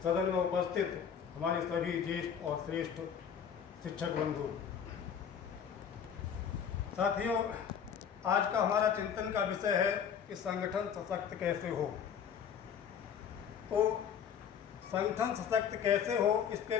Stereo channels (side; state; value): right; quieter; 7.8 dB